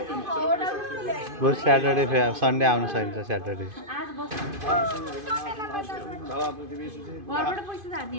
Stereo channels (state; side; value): late; left; 2.5 ms